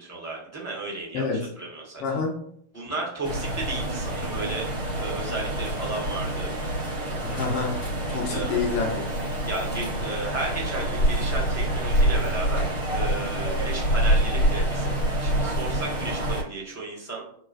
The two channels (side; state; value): right; late; 6.5 ms